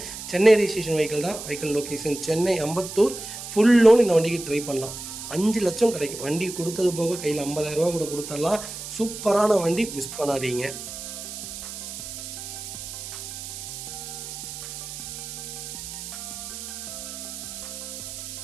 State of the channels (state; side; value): noise; right; hiss, 9 dB below the sound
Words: சென்னை ரெஜிஸ்ட்ரேஷன் வெஹிக்கிள் தான். Vehicle location Chennai Ambattur. Full loan இந்த வண்டிக்கு ட்ரை பண்ணலாம். 5 லட்சம் கிடைக்கும். வண்டி கொடுத்தது போக கையில் 50,000 கூட கொடுத்துடலாம். சூப்பரான வண்டி, மிஸ் பண்ணாதீங்க.